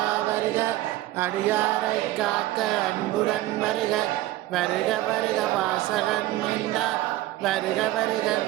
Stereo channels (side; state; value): left; quieter; 16.1 dB